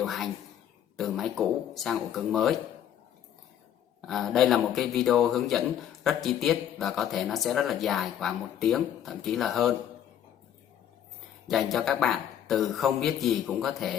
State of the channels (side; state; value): right; quieter; 10.0 dB